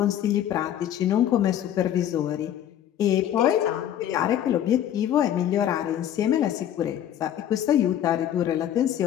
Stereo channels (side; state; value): right; quieter; 10.8 dB